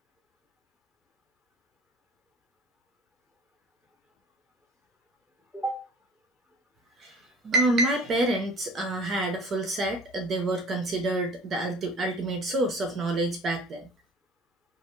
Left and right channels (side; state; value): both; normal; correlation 0.45